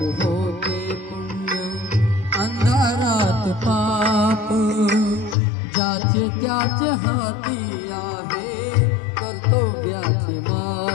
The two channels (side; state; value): right; drops out; at 5.4 s